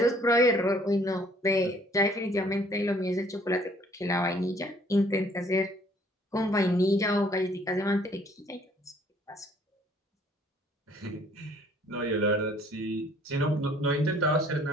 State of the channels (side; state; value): both; normal; correlation 0.60